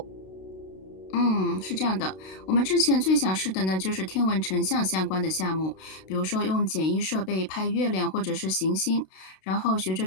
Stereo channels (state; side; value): late; right; 32 ms